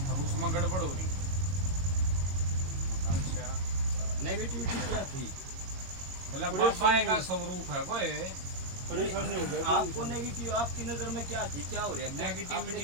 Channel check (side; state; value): left; late; 22 ms